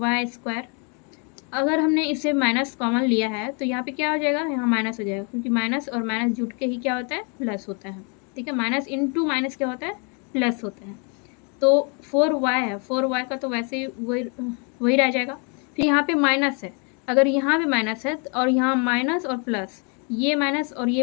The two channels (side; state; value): right; quieter; 36.1 dB